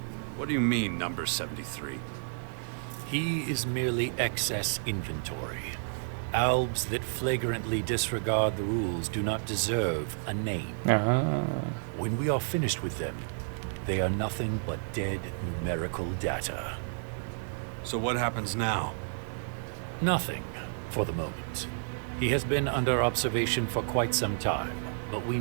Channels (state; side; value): silent; left; 57 dB below the other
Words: What do you mean, number 73? He is merely excess inventory. Albs that flagrantly disregard the rules do not deserve a name. When we are finished with them, they are nothing but dead numerical data. So what happens now? Nothing, for the moment. He has been under observation for quite some time, but we